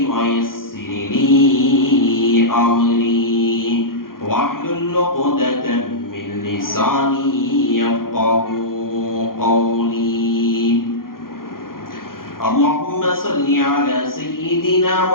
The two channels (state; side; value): late; right; 0.91 ms